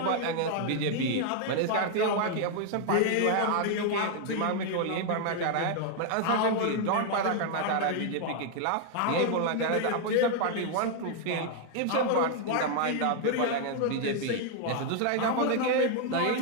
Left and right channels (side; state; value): both; different; correlation 0.00